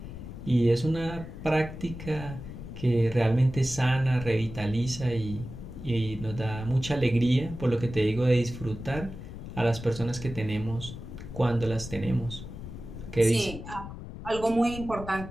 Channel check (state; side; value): noise; left; rumble, 11 dB below the sound